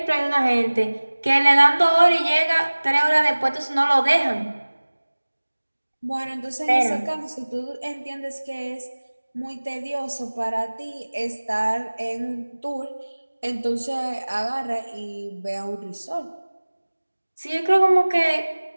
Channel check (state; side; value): inverted; both; correlation -1.00